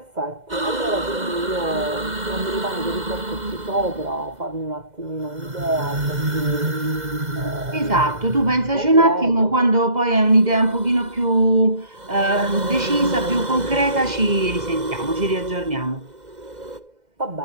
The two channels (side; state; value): left; late; 2.0 ms